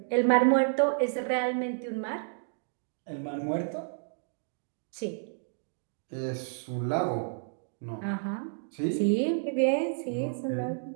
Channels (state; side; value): silent; left; digital silence